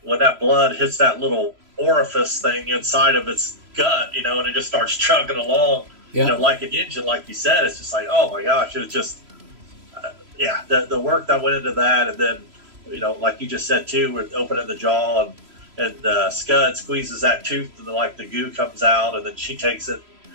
when that blood hits that little orifice thing inside of its gut, and it just starts chugging along. Like an engine, like you said. It's just like, oh my gosh, it was just, the work that went into that. And then, like you just said too, with opening the jaw, and Scud squeezes that tooth, and the goo comes out, and then she takes it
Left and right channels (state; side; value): late; left; 3.0 ms